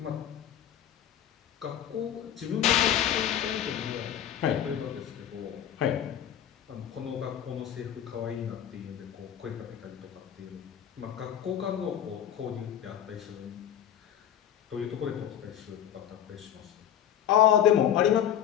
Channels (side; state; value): right; quieter; 10.3 dB